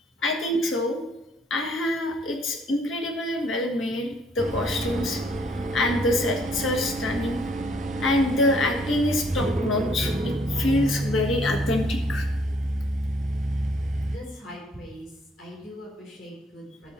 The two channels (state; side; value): normal; both; correlation 0.64